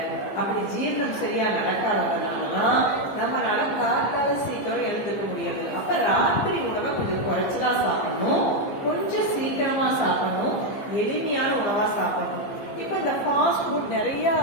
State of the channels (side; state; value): right; late; 15 ms